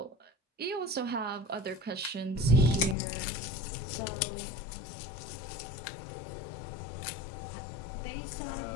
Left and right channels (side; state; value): right; drops out; at 3.0 s